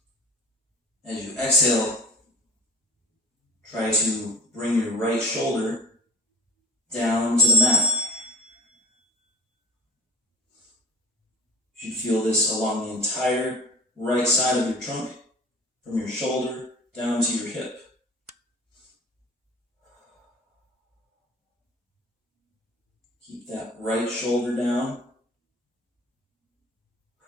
As you exhale, try to bring your right shoulder down to the mat. You should feel this along the entire right side of your trunk, from your shoulder down to your hip. Keep that right shoulder down.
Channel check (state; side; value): normal; both; correlation 0.40